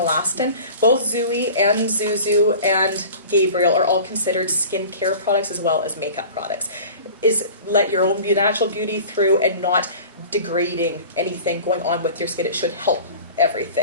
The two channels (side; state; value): both; inverted; correlation -0.40